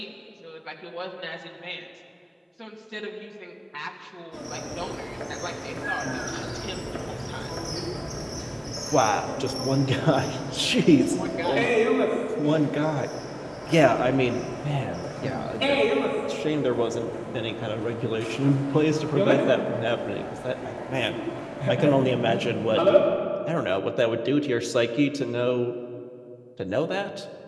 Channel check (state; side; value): identical; both; correlation 1.00